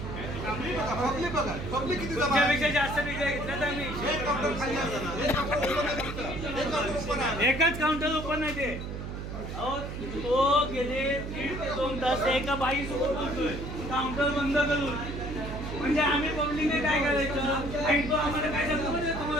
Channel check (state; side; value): noise; right; hum, 7 dB below the sound